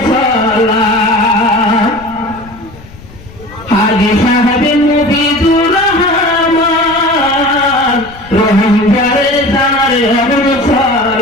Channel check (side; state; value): left; noise; rumble, 20 dB below the sound